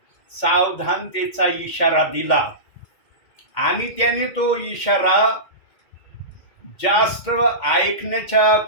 सावधानतेचा इशारा दिला, आणि त्याने तो इशारा जास्त ऐकण्याच्या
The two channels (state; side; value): late; right; 2.1 ms